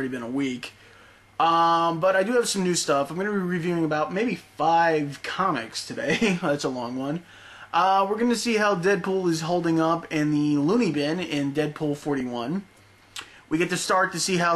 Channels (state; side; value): identical; both; correlation 1.00